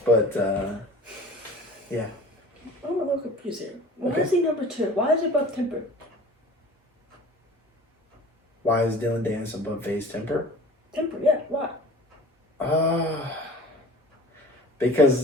But, yeah. I'm a little confused here. Why Okay. is he number 2? Why is it above Temper? Why is Dylan Dennis above FaZe Temper? Temper, yeah. Why?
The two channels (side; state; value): both; normal; correlation 0.43